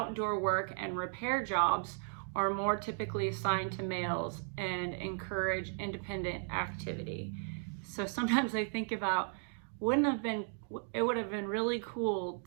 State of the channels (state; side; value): silent; left; 54 dB below the other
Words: work and repair jobs are more typically assigned to males and encourage independent activity. So sometimes I think about, it would have been really cool